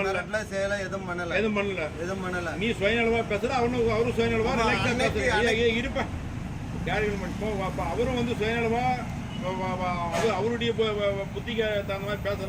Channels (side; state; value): both; identical; correlation 1.00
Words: சேல எதுவும் பண்ணல. நீ சுயநலவா பேசுற, அவரும் சுயநலவா ரிலாக்ஸா பேசுற. இருப்ப அவரும் வந்து சுயநலவா அவருடைய புத்திக்கு தகுந்த மாதிரி